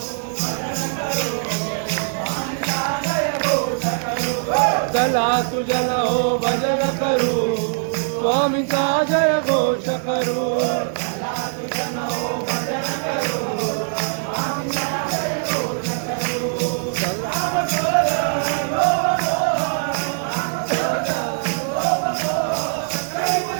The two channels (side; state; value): left; silent; 65 dB below the other